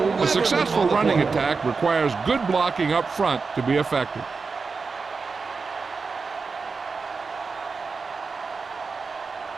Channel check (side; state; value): left; quieter; 4.7 dB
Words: A successful running attack requires good blocking up front to be effective.